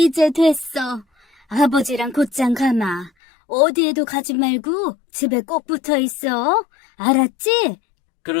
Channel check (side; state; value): right; drops out; at 3.1 s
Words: 됐어. 아버지랑 곧장 가마. 어디에도 가지 말고 집에 꼭 붙어 있어. 알았지?